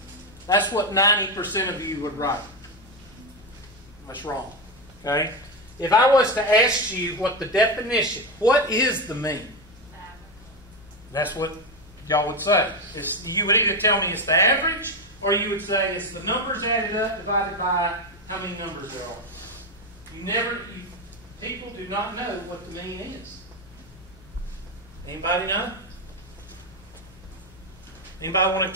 That's what 90% of you would write. That's wrong. Okay? If I was to ask you what the definition, what is the mean? That's what y'all would say. You would either tell me it's the average, or you would say it's the numbers added up divided by how many numbers there are. People do not know what the mean is. Anybody know? Anybody want to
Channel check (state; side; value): normal; both; correlation 0.12